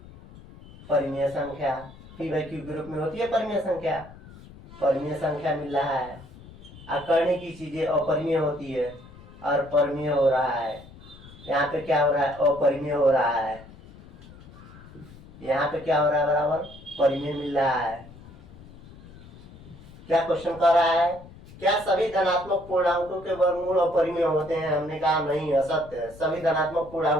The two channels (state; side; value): noise; left; rumble, 19 dB below the sound